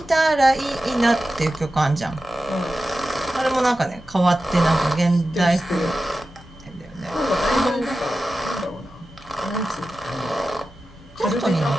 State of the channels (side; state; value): both; normal; correlation 0.93